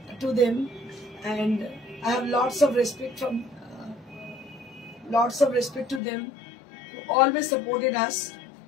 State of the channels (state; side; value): drops out; right; at 6.0 s